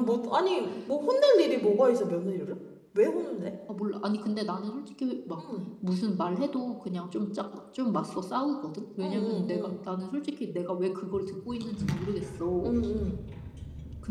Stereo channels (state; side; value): identical; both; correlation 1.00